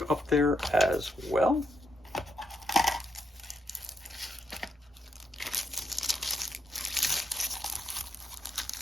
up there as well.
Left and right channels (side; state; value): both; normal; correlation 0.77